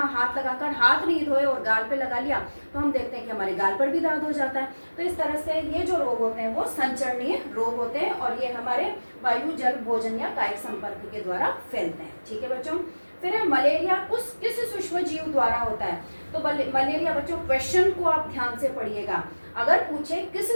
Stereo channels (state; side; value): inverted; both; correlation -1.00